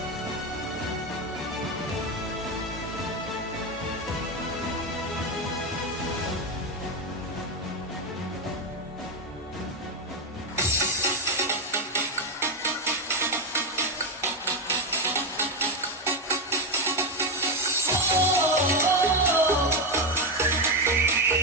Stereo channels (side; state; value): both; normal; correlation 0.10